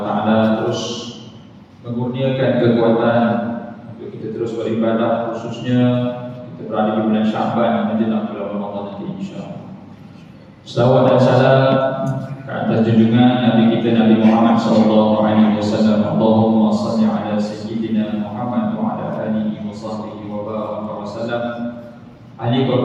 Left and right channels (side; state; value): both; identical; correlation 1.00